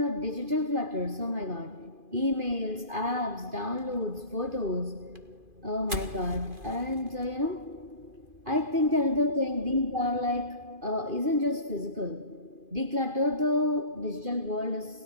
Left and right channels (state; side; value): late; left; 2.5 ms